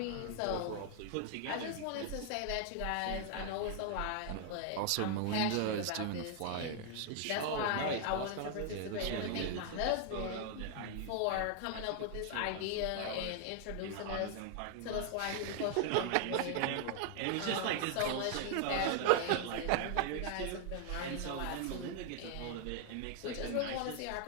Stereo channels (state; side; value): different; both; correlation 0.00